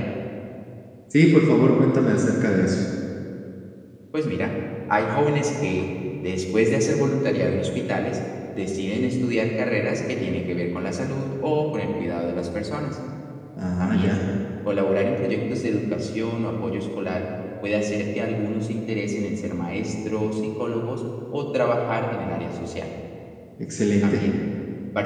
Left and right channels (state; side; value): identical; both; correlation 1.00